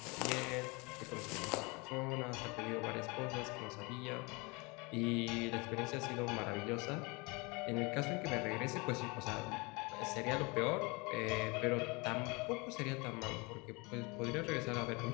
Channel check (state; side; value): quieter; right; 27.3 dB